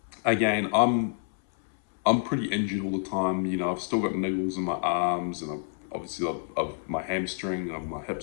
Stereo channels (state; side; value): silent; right; 59 dB below the other